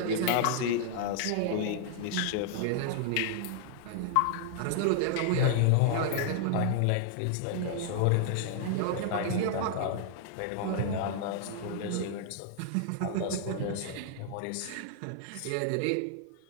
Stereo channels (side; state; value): both; different; correlation -0.01